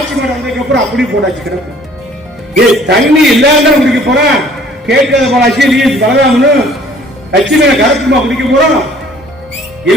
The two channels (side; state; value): both; normal; correlation 0.55